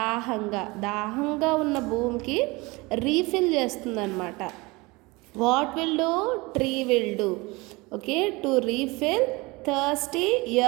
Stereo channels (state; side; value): quieter; left; 24.2 dB